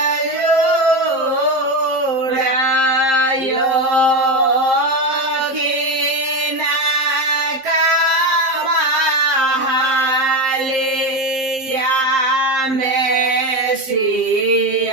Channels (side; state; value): left; late; 7.5 ms